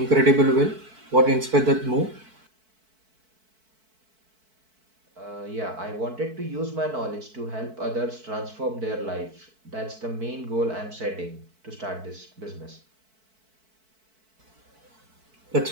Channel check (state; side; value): late; left; 4.5 ms